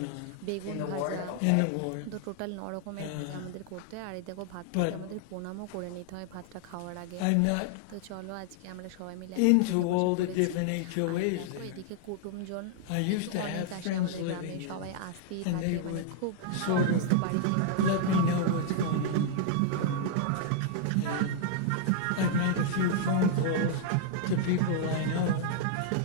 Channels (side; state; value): both; different; correlation -0.01